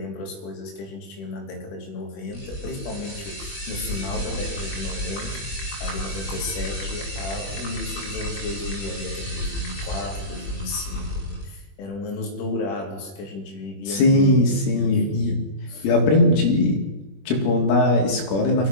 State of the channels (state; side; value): late; right; 21 ms